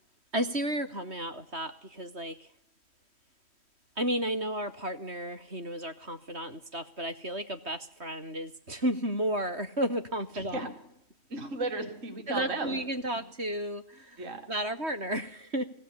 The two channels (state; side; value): late; left; 3.2 ms